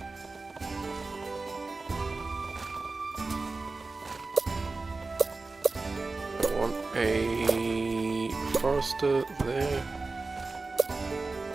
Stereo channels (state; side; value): quieter; left; 3.7 dB